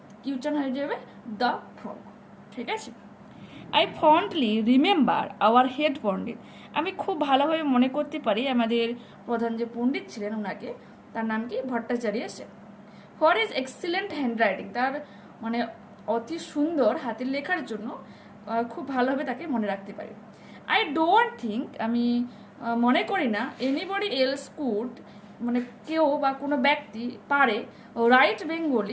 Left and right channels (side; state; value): both; identical; correlation 1.00